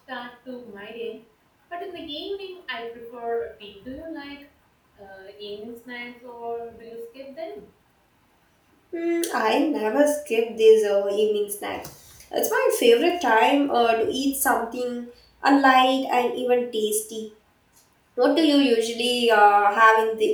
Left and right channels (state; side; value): identical; both; correlation 1.00